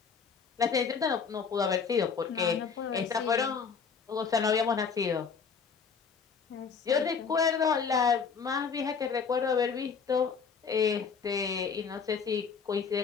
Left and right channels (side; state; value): right; quieter; 5.8 dB